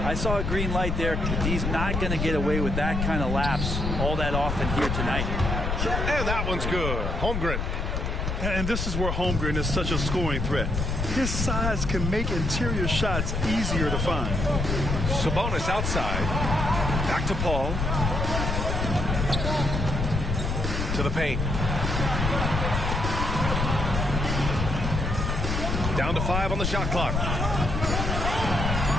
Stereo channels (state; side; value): noise; left; rumble, 1 dB below the sound